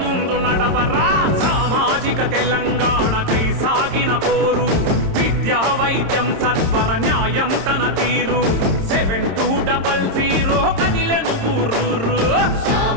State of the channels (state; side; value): late; left; 26 ms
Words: ముందు నడవరా సామాజిక తెలంగాణకై సాగిన పోరు విద్యా వైద్యం సత్వర న్యాయం తన తీరు 7200 కదిలెను ఊరూరు